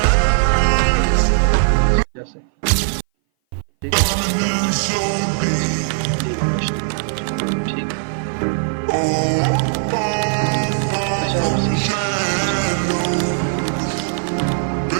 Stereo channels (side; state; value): left; silent; 59 dB below the other